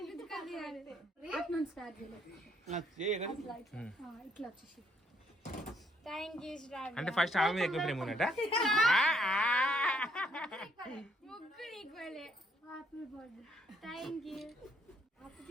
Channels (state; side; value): normal; both; correlation 0.69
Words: అంటే ఫస్ట్ ఆమె మీద ఎక్కువ ప్రేమ ఉన్నట్ట. ముగ్గురు ఈక్వలే. Happy birthday. Thank you